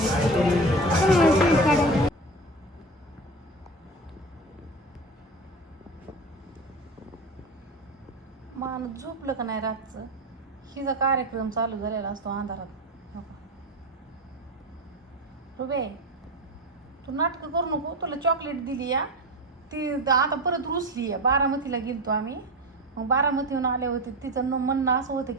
माणूस झोपलं का नाही रातचं. हिचा कार्यक्रम चालू झालेला असतो अंधारात. रुबे तू नाटकं करू नको. तुला चॉकलेट दिली या ती आता परत रुसली आहे. बारामतीला गेलतो आम्ही. मग बारामतीहून आले होते. तिचं म्हणणं असं होतं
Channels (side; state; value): both; normal; correlation 0.25